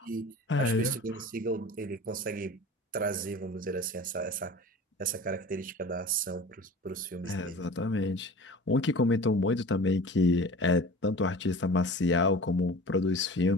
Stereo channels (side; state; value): both; normal; correlation 0.39